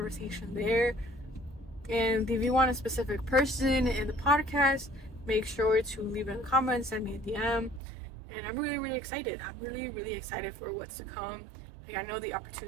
there. And if you want a specific person in the podcast, make sure to leave it in the comments. Send me a DM. And I'm really excited. I'm really excited for what's to come. Like, I know the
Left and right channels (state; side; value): drops out; left; at 7.8 s